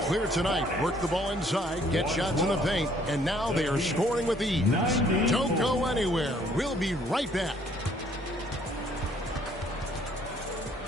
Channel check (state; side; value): normal; both; correlation 0.62